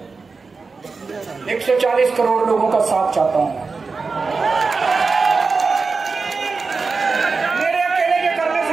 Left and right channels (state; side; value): quieter; left; 4.4 dB